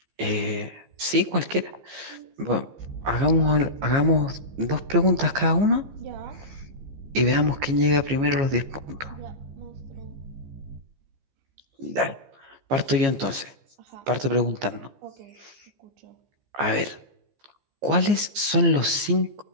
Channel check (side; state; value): left; late; 15 ms